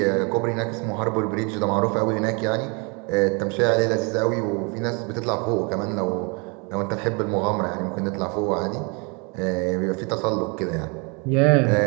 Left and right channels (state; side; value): quieter; left; 32.4 dB